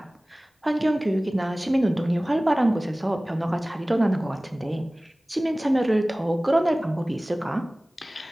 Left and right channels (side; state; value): both; normal; correlation 0.98